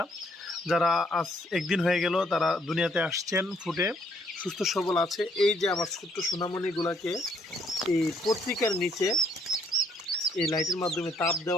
যারা আজ একদিন হয়ে গেল তারা দুনিয়াতে আসছেন, ফুটে সুস্থ সবল আছে। এই যে আমার ছোট্ট সোনামণিগুলাকে এই পত্রিকার নিচে এই লাইটের মাধ্যমে তাপ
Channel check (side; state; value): both; normal; correlation 0.67